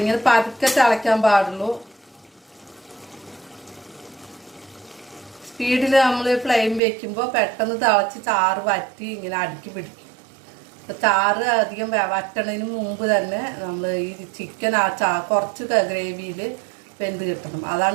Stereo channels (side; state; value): left; drops out; at 6.8 s